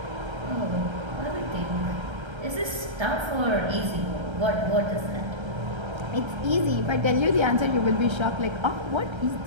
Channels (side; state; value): left; late; 1.3 ms